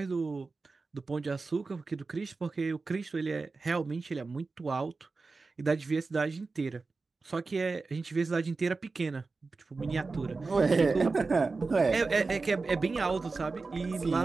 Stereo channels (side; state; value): left; quieter; 4.0 dB